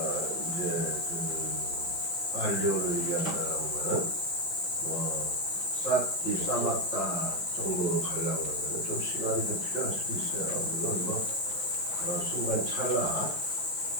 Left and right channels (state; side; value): late; right; 5.4 ms